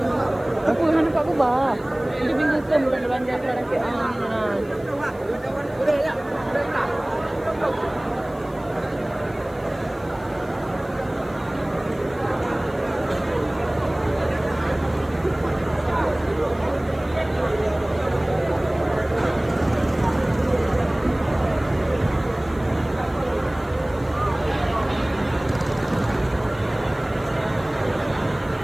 Aku nak nampak aku bah. Dia bingung bukan belanja sekarang ke.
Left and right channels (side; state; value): left; noise; hiss, 28 dB below the sound